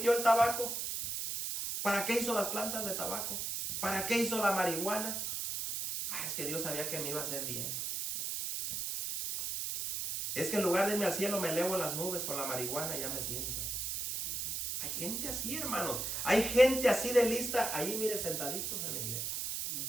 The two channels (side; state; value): right; noise; hiss, 2 dB below the sound